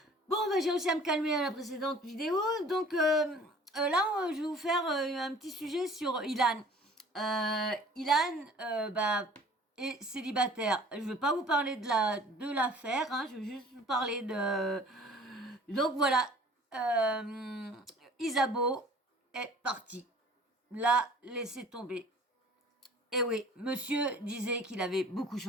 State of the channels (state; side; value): normal; both; correlation 0.49